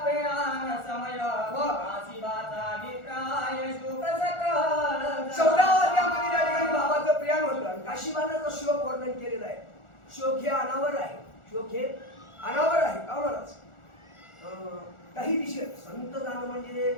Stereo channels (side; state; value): right; late; 1.4 ms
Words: प्रयाण समय काशीबाचा अभिप्राय शोक सकल. 14व्या अध्यायामध्ये त्या ठिकाणी बाबाचं प्रयाण होतं. काशीबानाचं शोक वर्णन केलेलं आहे. शोक हे अनावर आहे. शोक हे अनावर आहे. का महाराज? काही दिशेत संत जाणं म्हणजे